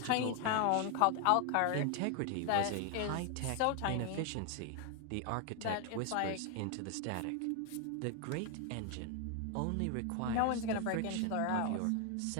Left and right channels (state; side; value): different; both; correlation 0.00